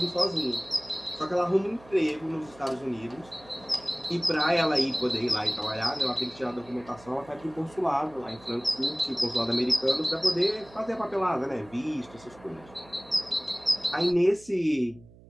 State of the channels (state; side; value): noise; right; hum, 23 dB below the sound